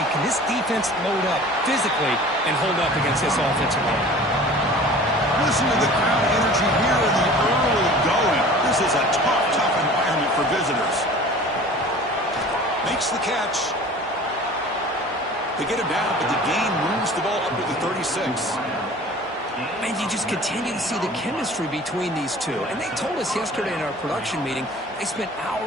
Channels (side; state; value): both; normal; correlation 0.44